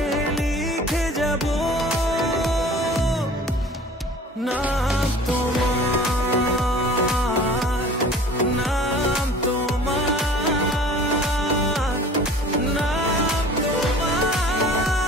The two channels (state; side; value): normal; both; correlation 0.46